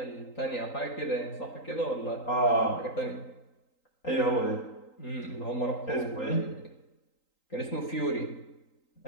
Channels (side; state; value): right; late; 3.9 ms